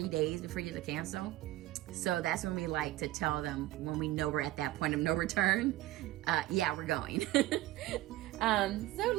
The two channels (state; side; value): quieter; left; 16.3 dB